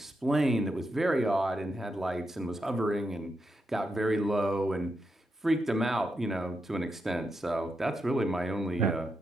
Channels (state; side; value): normal; both; correlation 0.85